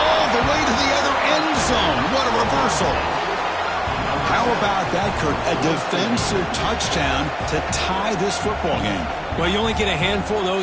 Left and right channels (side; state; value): both; identical; correlation 1.00